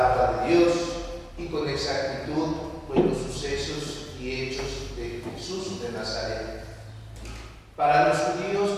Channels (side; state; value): both; identical; correlation 1.00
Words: de Dios y con exactitud pues, los sucesos y hechos de Jesús de Nazaret. Para los